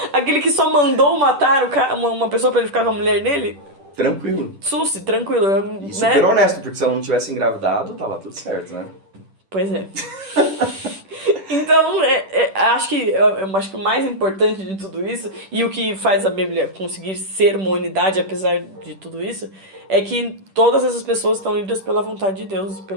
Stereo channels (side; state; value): left; late; 10 ms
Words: Aquele que só mandou matar uma pessoa pra ele ficar com a mulher dele. Tranquilo. Susse, tranquilo. E super honesto, porque se ela não tivesse engravidado, tava tudo certo, né? Pois é. Então, eu acho que o mais importante de tudo isso, e o que faz a Bíblia conseguir ser uma unidade apesar de tudo isso, é que todas essas pessoas estão unidas pela vontade de Deus,